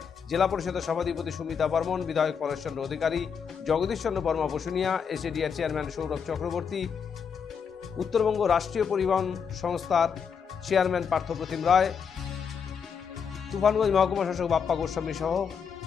জেলা পরিষদের সভাধিপতি সুমিতা বর্মন, বিধায়ক পরেশচন্দ্র অধিকারী, জগদীশচন্দ্র বর্মা বসুনিয়া, এসএডিআর চেয়ারম্যান সৌরভ চক্রবর্তী, উত্তরবঙ্গ রাষ্ট্রীয় পরিবহন সংস্থার চেয়ারম্যান পার্থপ্রতিম রায়, তুফানগঞ্জ মহকুমা শাসক বাপ্পা গোস্বামী সহ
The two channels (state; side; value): quieter; right; 6.6 dB